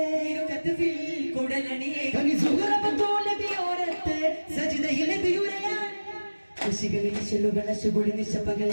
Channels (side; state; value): both; inverted; correlation -1.00